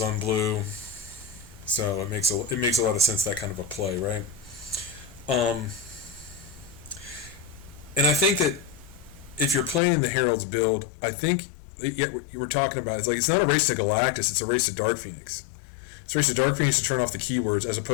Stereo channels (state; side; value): drops out; right; at 9.8 s